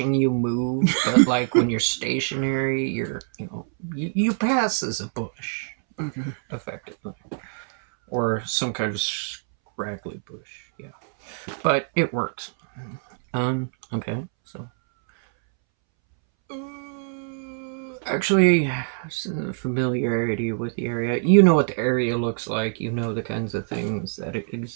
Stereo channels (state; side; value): silent; left; 62 dB below the other